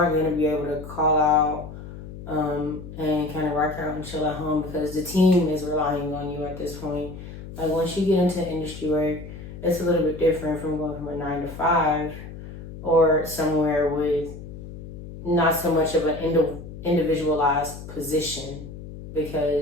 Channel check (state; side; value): noise; left; hum, 12 dB below the sound